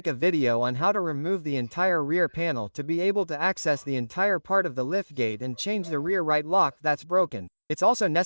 a video on how to remove the entire rear panel to be able to access the entire part of the liftgate and change the rear right lock that's broken. It's also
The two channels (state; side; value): inverted; both; correlation -1.00